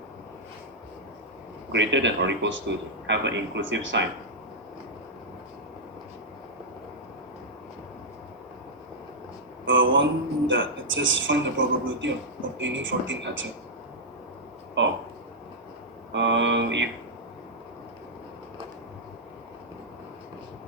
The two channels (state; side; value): normal; both; correlation -0.07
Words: Greater than or equals to, have an inclusive sign. One that it says find the probability of obtaining 14 answer. Oh. If